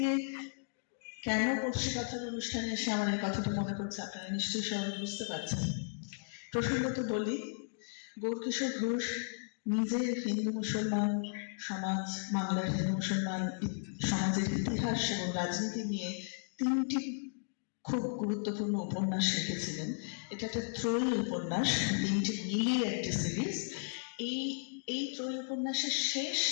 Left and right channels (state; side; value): silent; right; digital silence